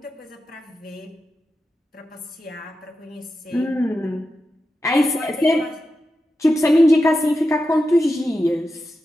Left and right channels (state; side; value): normal; both; correlation 0.90